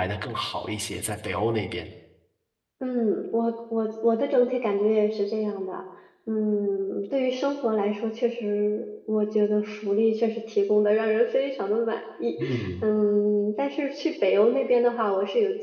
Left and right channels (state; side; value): identical; both; correlation 1.00